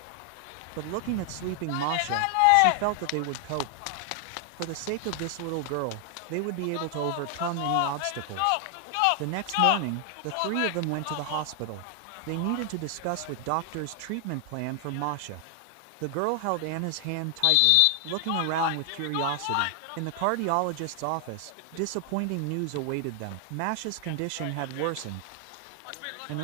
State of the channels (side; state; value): both; different; correlation 0.00